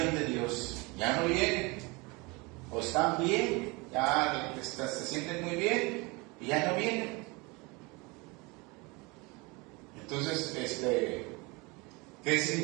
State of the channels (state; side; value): quieter; left; 26.4 dB